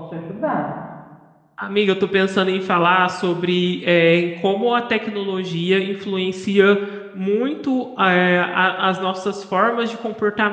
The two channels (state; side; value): identical; both; correlation 1.00